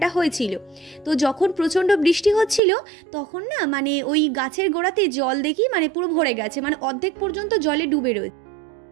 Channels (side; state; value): left; drops out; at 2.6 s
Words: হয়েছিল। তো যখন প্রচণ্ড বৃষ্টি হচ্ছিল তখন না মানে ওই গাছের গোড়াতে জল দেখি মানে পুরো ভরে গেছে, মানে অর্ধেক পর্যন্ত জলে ডুবে রয়েছে।